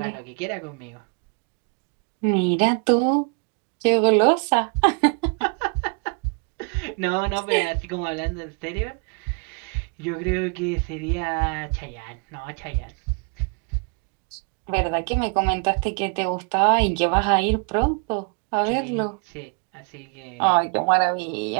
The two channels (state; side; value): quieter; left; 35.3 dB